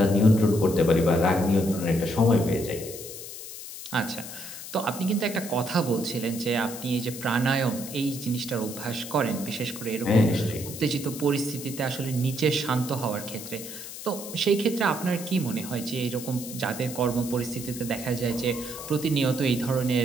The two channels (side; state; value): left; noise; hiss, 11 dB below the sound